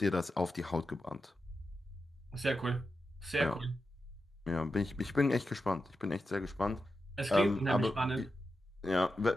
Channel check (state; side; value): normal; both; correlation 0.89